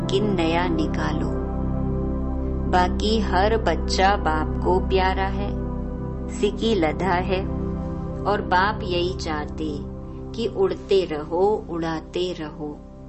नया निकालो। बाकी हर बच्चा बाप को प्यारा है, सिकी लधा है, और बाप यही चाहते कि उड़ते रहो, उड़ाते रहो।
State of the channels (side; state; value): both; identical; correlation 1.00